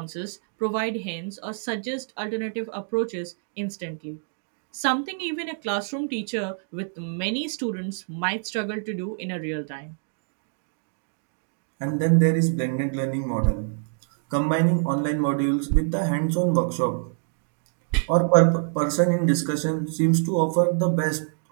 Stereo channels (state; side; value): silent; left; 61 dB below the other